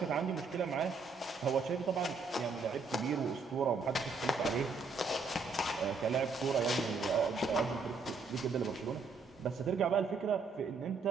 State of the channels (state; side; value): quieter; left; 4.3 dB